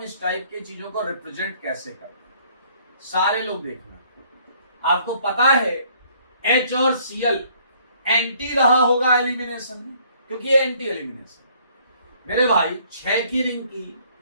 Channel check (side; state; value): both; inverted; correlation -0.61